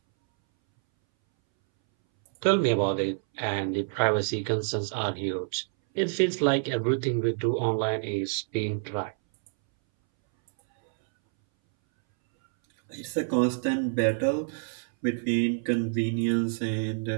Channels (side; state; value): left; silent; 60 dB below the other